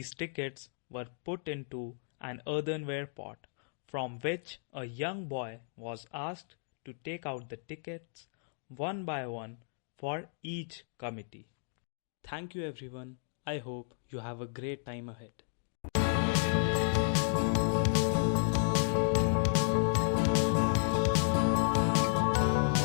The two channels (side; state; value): right; silent; digital silence